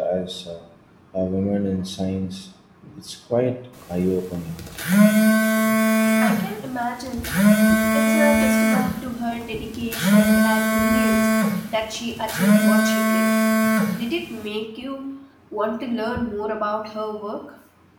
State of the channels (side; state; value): both; identical; correlation 1.00